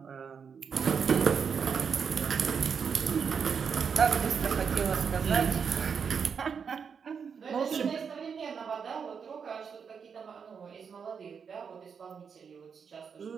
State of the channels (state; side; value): quieter; left; 6.4 dB